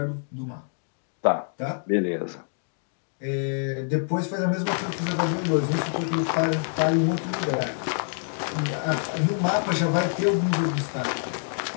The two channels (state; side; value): silent; right; digital silence